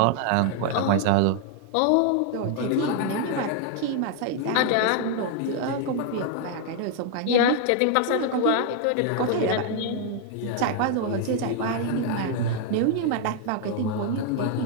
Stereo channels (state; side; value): different; both; correlation 0.00